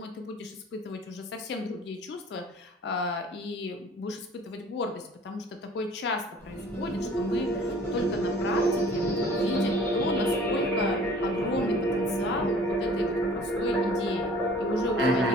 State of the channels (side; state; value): both; normal; correlation 0.50